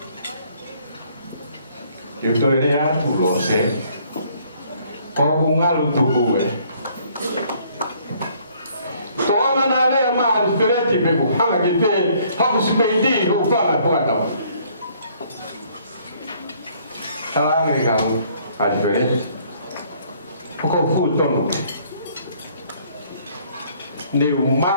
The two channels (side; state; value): both; inverted; correlation -0.62